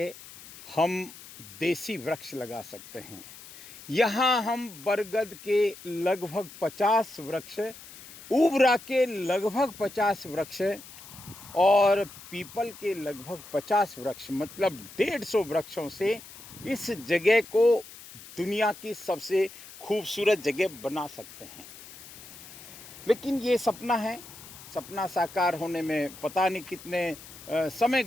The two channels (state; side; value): noise; left; hiss, 17 dB below the sound